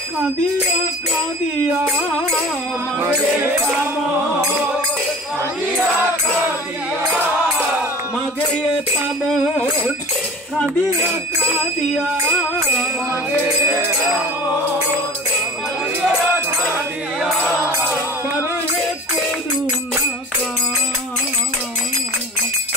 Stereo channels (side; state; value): both; normal; correlation 0.39